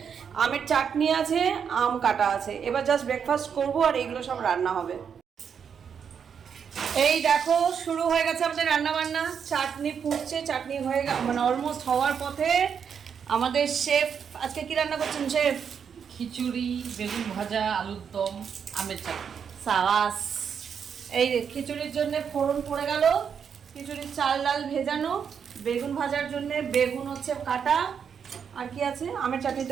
আমের চাটনি আছে, আম কাটা আছে। এবার জাস্ট ব্রেকফাস্ট করবো আর এইগুলো সব রান্না হবে। এই দেখো শুরু হয়ে গেছে আমাদের রান্না বান্না, চাটনি ফুটছে, চাটনি হয়ে মানে অলমোস্ট হওয়ার পথে। আমাদের শেফ আজকে কি রান্না করছেন শেফ? খিচুড়ি, বেগুন ভাজা, আলুর দম, আমের চাটনি। সাবাস। এই খিচুড়ির জন্য ফোড়ন পড়ে গেল, খিচুড়ির চাল ডাল ভেজানো, বেগুন ভাজার জন্য বেগুন হচ্ছে কাটা, আর কি আছে আমের চাটনি তো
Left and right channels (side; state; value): left; quieter; 7.2 dB